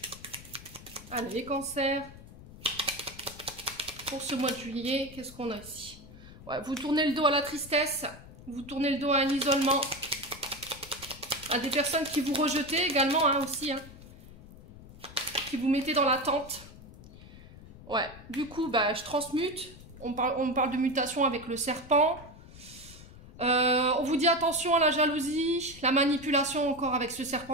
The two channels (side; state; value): left; noise; rumble, 18 dB below the sound